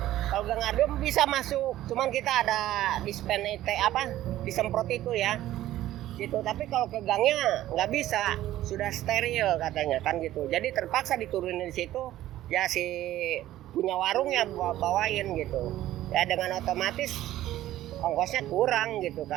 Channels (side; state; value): left; quieter; 14.1 dB